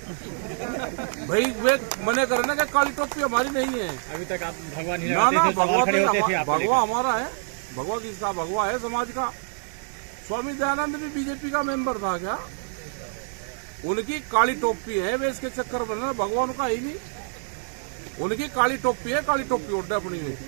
भाई। वे मने करे ना कि काली टोपी हमारी नहीं है। अभी तक आप भगवा नहीं ना, भगवा भगवा हमारा है। भगवा किसका? भगवा है समाज का। स्वामी दयानंद भी बीजेपी का मेंबर था क्या? उनकी काली टोपी है, वे इसके चक्कर में भगवान का ही नहीं। उनकी काली टोपी है, काली टोपी उड़े अपनी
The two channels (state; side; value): silent; left; digital silence